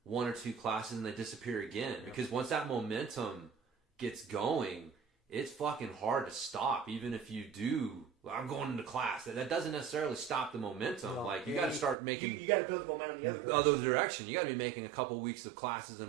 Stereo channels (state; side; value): drops out; left; at 12.0 s